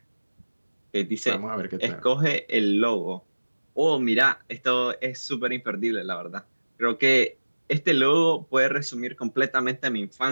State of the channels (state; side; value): inverted; both; correlation -1.00